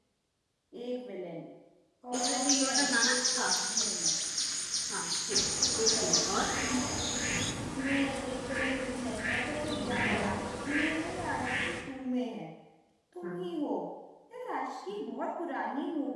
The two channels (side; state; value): both; identical; correlation 1.00